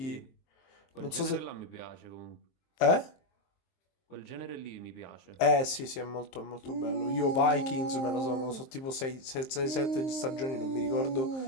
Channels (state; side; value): late; right; 23 ms